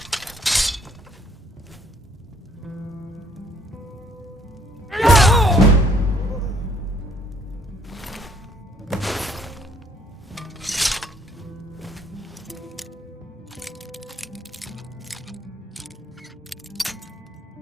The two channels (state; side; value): normal; both; correlation 0.63